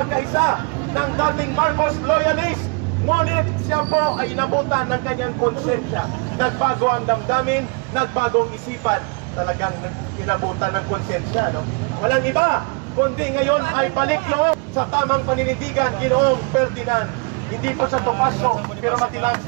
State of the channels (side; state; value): left; quieter; 33.2 dB